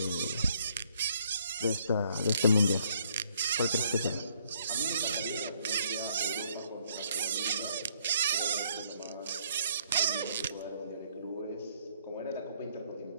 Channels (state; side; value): inverted; both; correlation -0.67